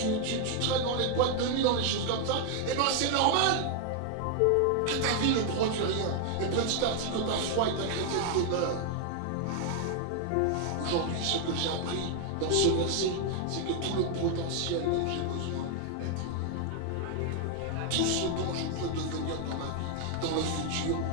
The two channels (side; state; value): both; different; correlation 0.00